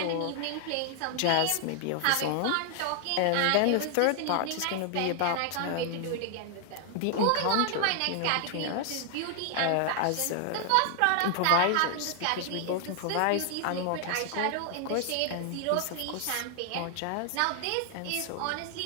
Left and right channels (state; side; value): different; both; correlation 0.00